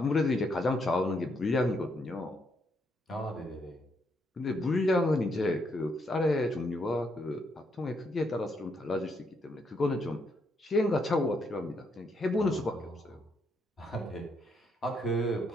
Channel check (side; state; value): both; normal; correlation 0.76